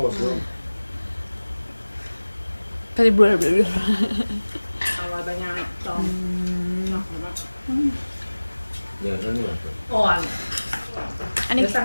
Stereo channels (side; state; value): both; inverted; correlation -1.00